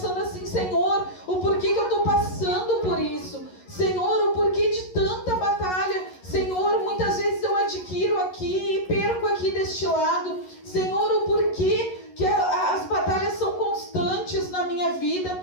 assim, Senhor, o porquê que eu estou passando por isso? Senhor, o porquê de tanta batalha? Senhor, muitas vezes eu adquiro aqui e perco aqui deste lado. Senhor, o porquê que as batalhas são constantes na minha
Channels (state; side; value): late; right; 11 ms